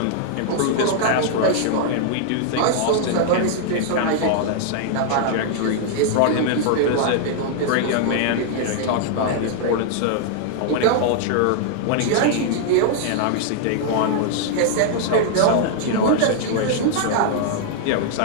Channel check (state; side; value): different; both; correlation -0.01